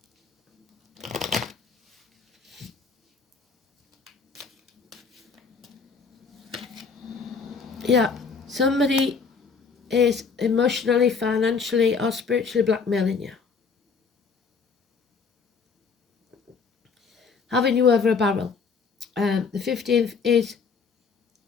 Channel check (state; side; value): quieter; right; 5.3 dB